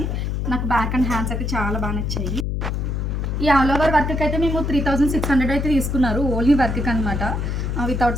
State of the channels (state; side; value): noise; left; hum, 1 dB below the sound